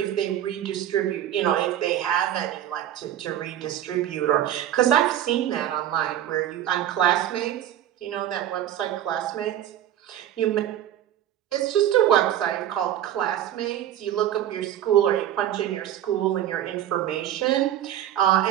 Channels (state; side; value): quieter; left; 11.5 dB